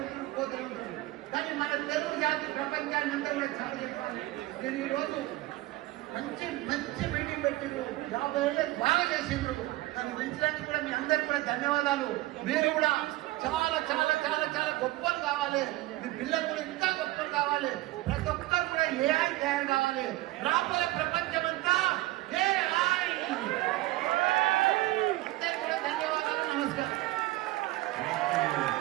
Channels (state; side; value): quieter; left; 18.3 dB